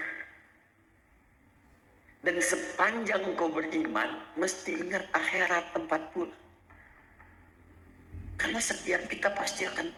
Dan sepanjang engkau beriman, mesti ingat akhirat tempat pulang. Karena setiap kita pasti akan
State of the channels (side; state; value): both; identical; correlation 1.00